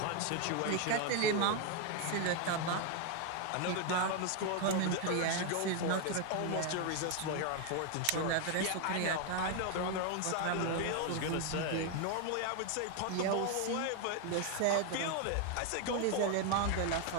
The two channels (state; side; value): different; both; correlation 0.01